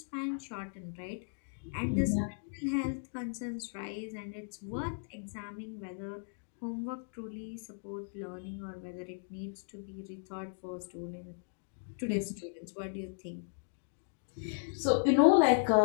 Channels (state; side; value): silent; right; digital silence